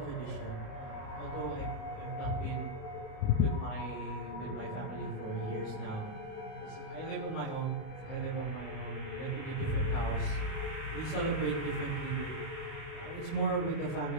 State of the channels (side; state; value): right; late; 37 ms